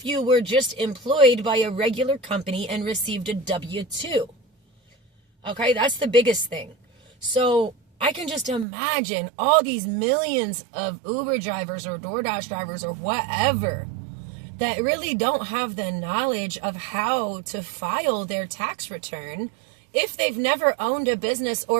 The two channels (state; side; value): drops out; left; at 8.7 s